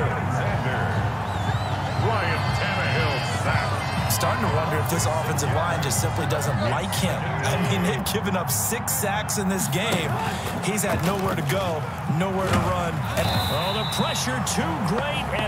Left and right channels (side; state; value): both; identical; correlation 1.00